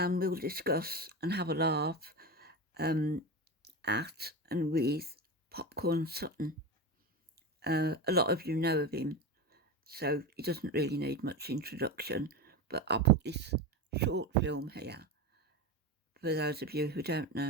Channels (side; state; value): both; normal; correlation 0.22